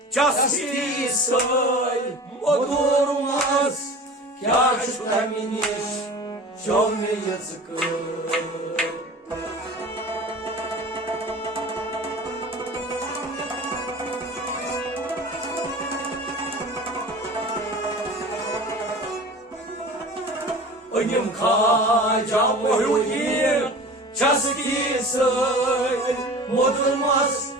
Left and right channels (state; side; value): normal; both; correlation 0.38